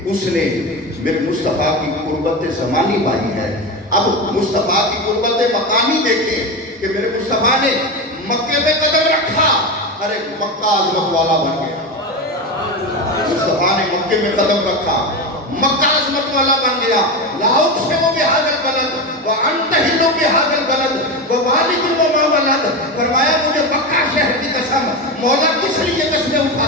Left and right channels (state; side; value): normal; both; correlation 0.19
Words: اس نے میرے مصطفیٰ کی قربت زمانی پائی ہے۔ اب مصطفیٰ کی قربت مکانی دیکھیں کہ میرے مصطفیٰ نے مکے میں قدم رکھا، ارے مکہ عظمت والا بن گیا۔ مصطفیٰ نے مکے میں قدم رکھا، مکہ عظمت والا بن گیا۔ لا اقسم بہذا البلد وانت حل بہذا البلد ووالد وما ولد، فرمایا مجھے مکہ شہر کی قسم، مولا کس لیے قسمیں